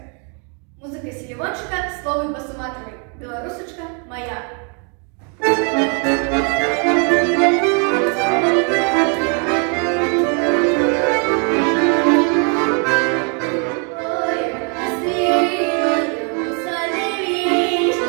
Музика Селівончика, слово Басуматовой. Белорусочка моя.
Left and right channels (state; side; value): quieter; left; 38.0 dB